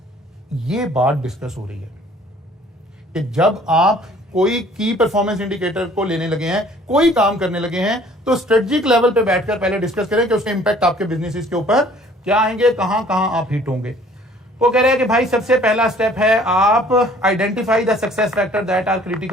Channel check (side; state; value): both; normal; correlation 0.55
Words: ये बात डिस्कस हो रही है कि जब आप कोई की परफॉर्मेंस इंडिकेटर को लेने लगे हैं, कोई काम करने लगे हैं, तो स्ट्रेटेजिक लेवल पे बैठकर पहले डिस्कस करें कि उसके इंपैक्ट आपके बिजनेस के ऊपर क्या आएंगे, कहां कहां आप हिट होंगे। वो कह रहे हैं कि भाई सबसे पहला स्टेप है आप identify the success factor that are